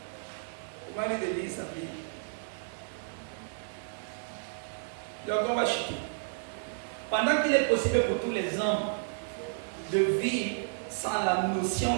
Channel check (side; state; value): left; silent; digital silence